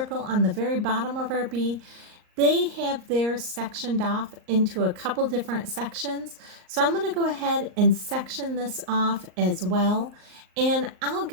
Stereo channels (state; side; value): late; left; 38 ms